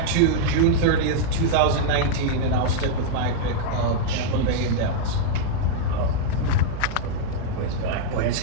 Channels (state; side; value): different; both; correlation -0.01